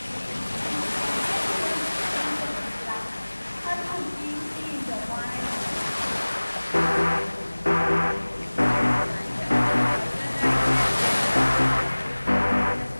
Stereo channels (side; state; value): both; inverted; correlation -1.00